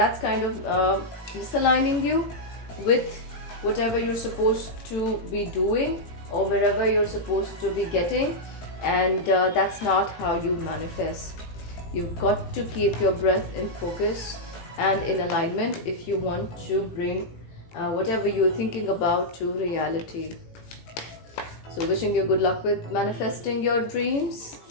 kind of misaligning you with whatever you're supposed to be doing or wherever you're supposed to be getting, and that's not how you manifest. You've got to keep your breath in focus and in alignment if you want to bring whatever you're thinking about to reality. So wishing you good luck with manifesting your dreams.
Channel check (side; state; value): right; late; 18 ms